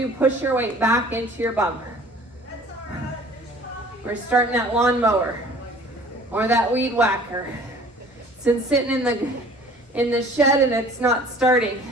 push your weight back into your bum. We're starting that lawnmower or that weed whacker. It's been sitting in the shed and it's not starting.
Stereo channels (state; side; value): normal; both; correlation 0.50